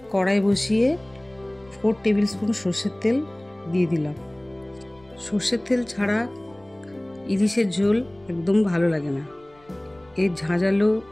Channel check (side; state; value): left; noise; rumble, 30 dB below the sound